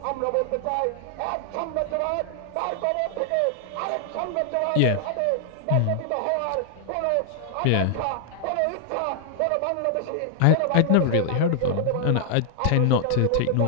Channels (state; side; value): different; both; correlation 0.00